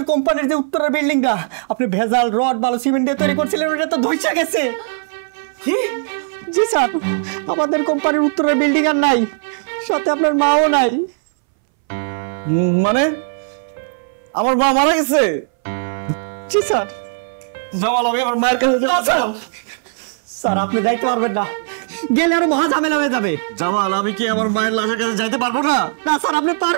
কোম্পানির যে উত্তরের বিল্ডিংটা আপনি ভেজাল রড বালু সিমেন্ট দিয়ে তৈরি করছিলেন, ওটা তো ধইসা গেছে। কি? জি স্যার, আমাদের কোম্পানির উত্তরের বিল্ডিং আর নাই, সাথে আপনার মাও নাই। মানে আমার মা মারা গেছে? জি স্যার। জামাল, আমি আমার মায়ের কাছে যাব। স্যার আপনি যাইতে পারবেন না, গেলে আরো মহা ঝামেলা হয়ে যাবে। জামাল, আমি কি আমার মায়ের লাশের কাছে যাইতে পারবো না? না স্যার, আপনি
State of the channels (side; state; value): left; silent; 64 dB below the other